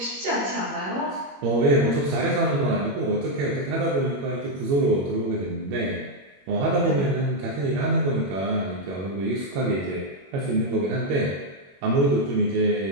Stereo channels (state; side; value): late; left; 21 ms